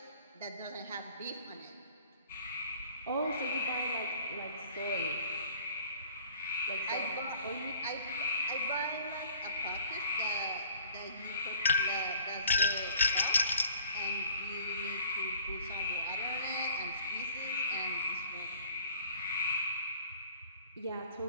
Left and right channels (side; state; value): both; inverted; correlation -0.53